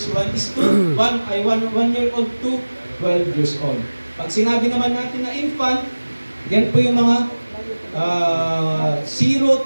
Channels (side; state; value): both; inverted; correlation -1.00